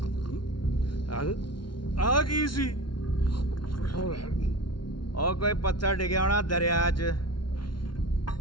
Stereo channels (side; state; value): right; late; 0.72 ms